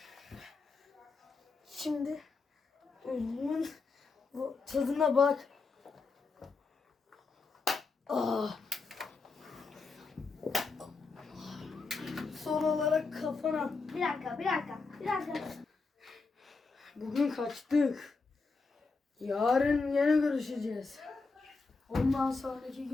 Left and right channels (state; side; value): quieter; right; 4.2 dB